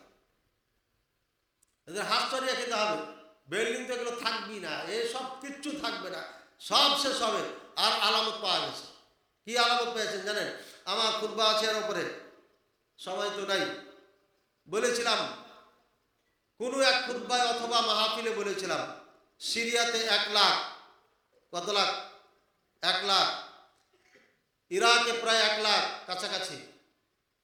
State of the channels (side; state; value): both; identical; correlation 1.00